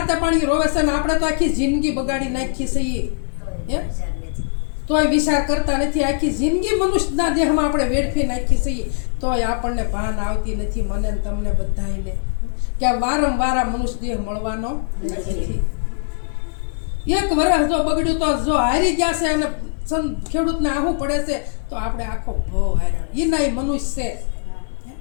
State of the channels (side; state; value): right; silent; digital silence